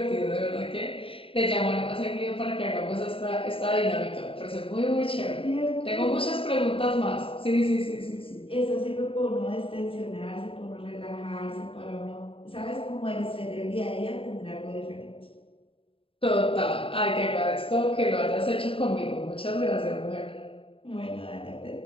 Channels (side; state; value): right; late; 0.27 ms